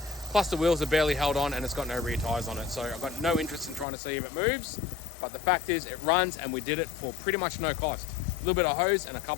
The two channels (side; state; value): right; drops out; at 3.9 s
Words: Plus the wheels are barely held on and it's got no rear tyres on it. So I've got no interest in trying to see if it moves. But the fact is it runs and we did it for pretty much no cost. A little bit of hose and a